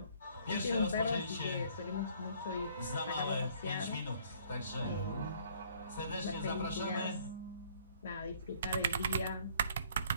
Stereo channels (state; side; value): inverted; both; correlation -0.60